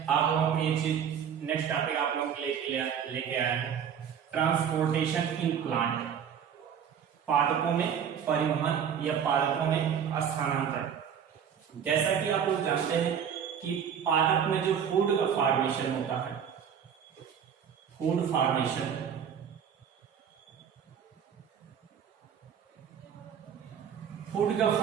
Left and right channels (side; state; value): left; quieter; 8.0 dB